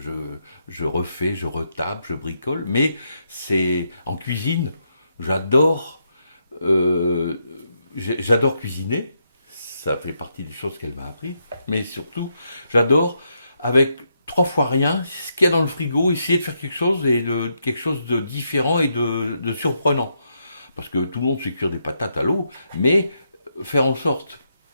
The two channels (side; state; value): both; inverted; correlation -0.80